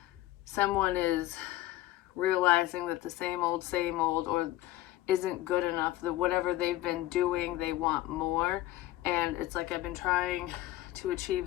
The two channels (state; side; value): quieter; right; 15.7 dB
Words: someone is realizing that the same old or isn't good enough, that whatever they've been doing, they want more. And it's like, I've been trying to achieve